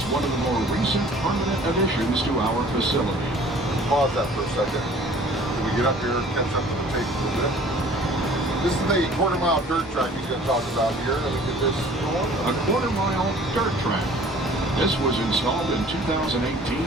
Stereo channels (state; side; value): normal; both; correlation 0.50